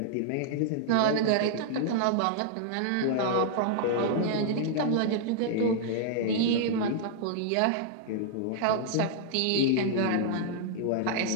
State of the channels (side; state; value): both; different; correlation -0.01